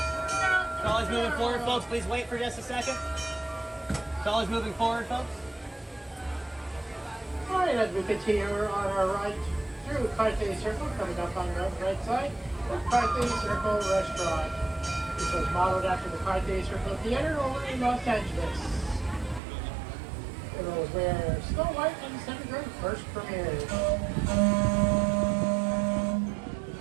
Trolley's moving forward, folks. Please wait for just a second. Trolley's moving forward, folks. Alright, as we continue on our ride through Carthay Circle, coming up on the right side, the Carthay Circle Restaurant, which was modeled after the Carthay Circle Theater over in Los Angeles. It was where Snow White and the Seven Dwarfs first premiered.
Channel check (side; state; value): left; drops out; at 19.4 s